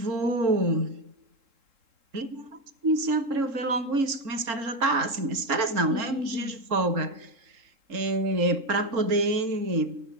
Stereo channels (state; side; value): late; left; 3.7 ms